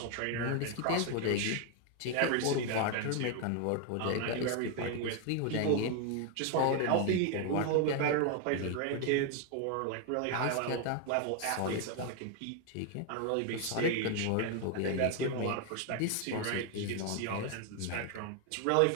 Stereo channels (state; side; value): different; both; correlation 0.01